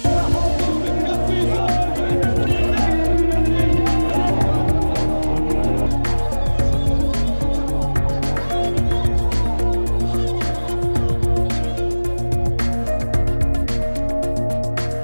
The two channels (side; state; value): both; inverted; correlation -1.00